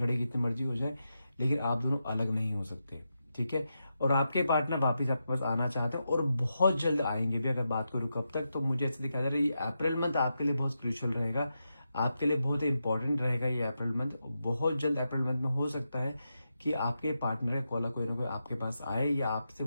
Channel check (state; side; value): inverted; both; correlation -0.87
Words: कितनी मर्जी हो जाए, लेकिन आप दोनों अलग नहीं हो सकते, ठीक है। और आपके पार्टनर वापस आपके पास आना चाहते हैं और बहुत जल्द आएंगे भी। अगर बात करूं कब तक, तो मुझे ऐसे दिखाई दे रहा है ये अप्रैल मंथ आपके लिए बहुत क्रूशियल रहेगा, आपके लिए बहुत इंपॉर्टेंट रहेगा ये अप्रैल मंथ। बहुत जल्द अप्रैल मंथ में हो सकता है कि आपके पार्टनर का कॉल कोई ना कोई आपके पास आए, या आपसे